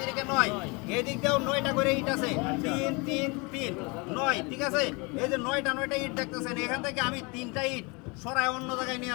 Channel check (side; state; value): right; quieter; 28.7 dB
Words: থেকে 9 এদিক দিয়েও 9টা করে ইট আছে 3 3 3 9 ঠিক আছে এই যে 9টা ইট দেখতেছেন এখান থেকে আমি 3টা ইট সরায় অন্য জায়গায়